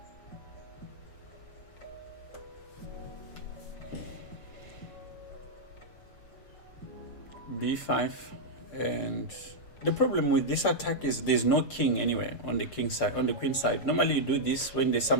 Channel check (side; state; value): right; late; 6.6 ms